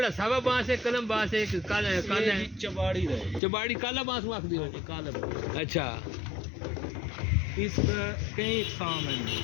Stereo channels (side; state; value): right; drops out; at 3.4 s